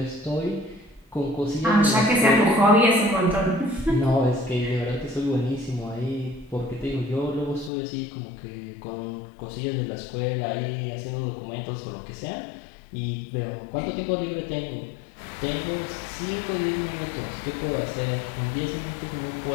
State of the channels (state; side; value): drops out; right; at 7.7 s